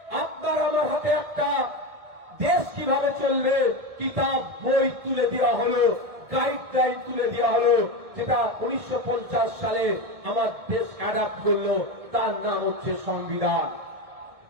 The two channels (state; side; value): late; left; 1.6 ms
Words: আপনার আমার হাতে একটা দেশ কিভাবে চলবে কিতাব বই তুলে দেওয়া হলো, গাইডলাইন তুলে দেওয়া হলো, যেটা 1950 সালে আমার দেশ অ্যাডাপ্ট করলো। তার নাম হচ্ছে সংবিধান।